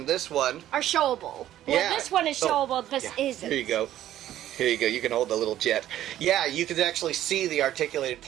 this one, Are showable. Yeah. Well, this one is showable. This yeah. isn't. Here you go. Here you go. You can hold the little jet. Yeah, you can actually see the articulated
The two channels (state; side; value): quieter; left; 12.6 dB